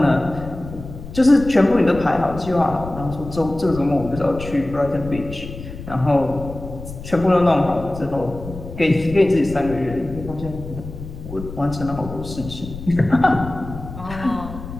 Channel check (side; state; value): left; noise; rumble, 12 dB below the sound